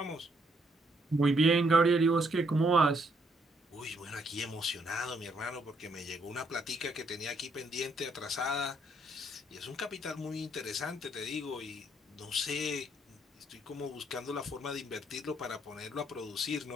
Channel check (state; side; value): normal; both; correlation 0.71